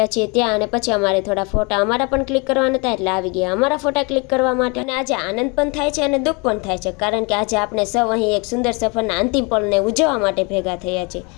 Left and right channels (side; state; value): right; quieter; 30.4 dB